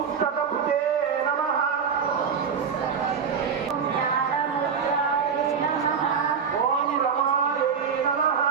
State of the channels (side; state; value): left; quieter; 6.5 dB